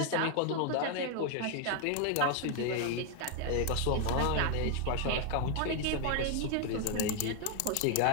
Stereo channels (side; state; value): both; different; correlation 0.01